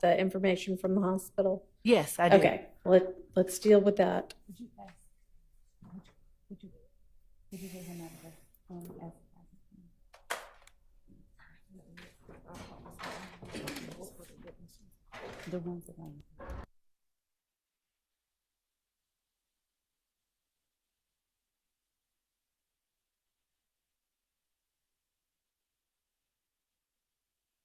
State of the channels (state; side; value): identical; both; correlation 1.00